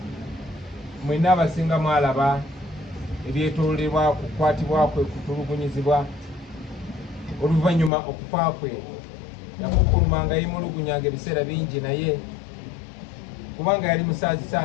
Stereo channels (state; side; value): drops out; right; at 7.9 s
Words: mwena abasinga mwalaba ebyetoolebwa kukwatibwa kwe, kutulugunyizibwa oluvannyuma okufa kwe. Yakukulumanga yimulugunyanga ebiseera bingi, naye kubanga yali musaazi